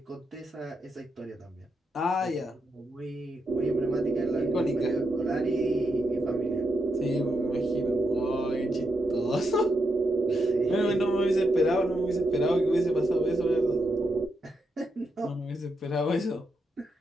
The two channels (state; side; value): normal; both; correlation 0.82